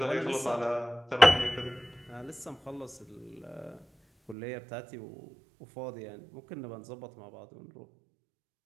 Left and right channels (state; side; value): drops out; left; at 4.4 s